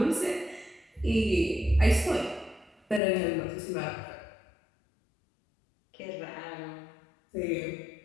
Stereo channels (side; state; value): right; drops out; at 3.0 s